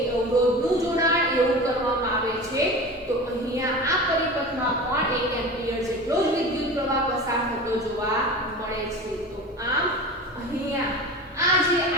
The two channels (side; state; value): both; normal; correlation 0.33